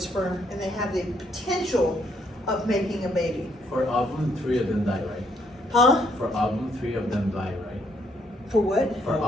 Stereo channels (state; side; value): normal; both; correlation 0.71